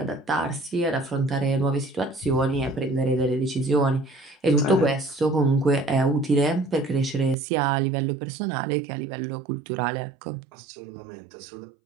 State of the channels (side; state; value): left; drops out; at 7.4 s